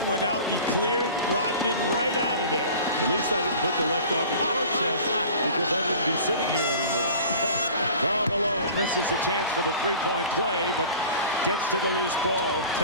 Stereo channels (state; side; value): inverted; both; correlation -0.42